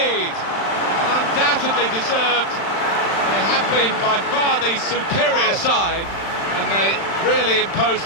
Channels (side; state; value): right; late; 35 ms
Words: And undoubtedly deserved. They have been by far the superior side, and they really imposed